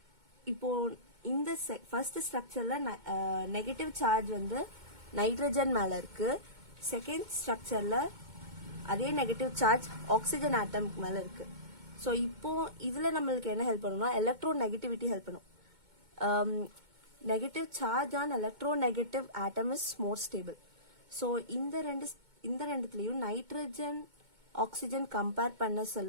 இப்போ இந்த ஃபர்ஸ்ட் ஸ்ட்ரக்சர்ல நெகட்டிவ் சார்ஜ் வந்து நைட்ரஜன் மேல இருக்கு. செகண்ட் ஸ்ட்ரக்சர்ல அதே நெகட்டிவ் சார்ஜ் ஆக்சிஜன் ஆட்டம்க்கு மேல இருக்கு. ஸோ இப்போ இதுல நம்மளுக்கு என்ன ஹெல்ப் பண்ணும்னா, எலக்ட்ரோ நெகட்டிவிட்டி ஹெல்ப் பண்ணும். Negative charge on electronegative atom is more stable. So இந்த ரெண்டுத்துலயும் நைட்ரஜன் ஆக்சிஜன் கம்பேர் பண்ண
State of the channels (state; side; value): late; left; 2.2 ms